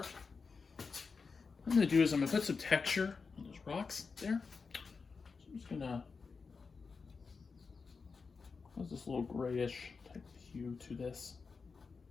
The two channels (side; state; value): right; quieter; 4.9 dB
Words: What I'm going to do is I'm going to put some texture on those rocks there. So I'm just going to cause this little grayish type of hue to this.